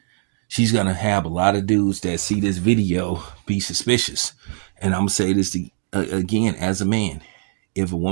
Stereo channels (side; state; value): left; silent; digital silence